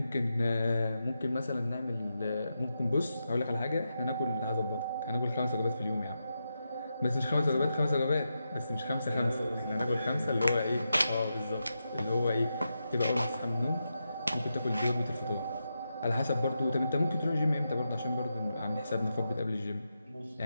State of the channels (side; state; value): both; inverted; correlation -0.87